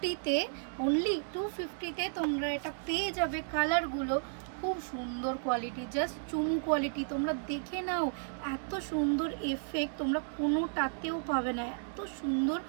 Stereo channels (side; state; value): left; silent; digital silence